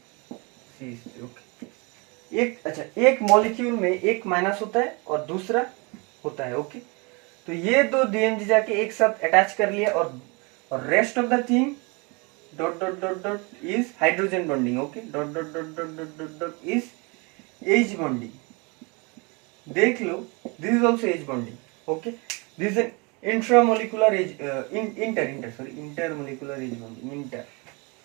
ओके। एक अच्छा एक मॉलिक्यूल में एक माइनस होता है और दूसरा होता है ओके। तो ये 2 DMG जाके एक साथ अटैच कर लिया और rest of the thing dot dot dot dot is hydrogen bonding okay. Dot dot dot dot dot dot dot is H bonding. देख लो this is also H bonding okay. This is an intramolecular H intermolecular H bonding inter.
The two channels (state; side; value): quieter; left; 29.4 dB